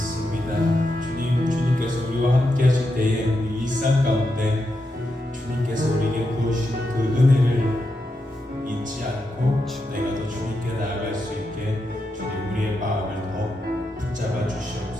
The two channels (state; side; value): normal; both; correlation 0.85